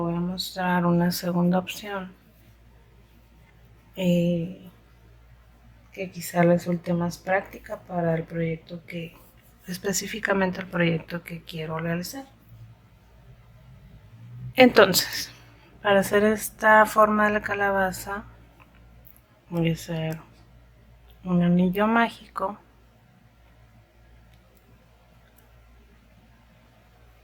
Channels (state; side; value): identical; both; correlation 1.00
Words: a mostrar una segunda opción que quizá resulte más práctica para el proyecto específicamente el proyecto que quiero realizar. Entonces, para hacer esta forma de la calabaza voy a hacer un anillo mágico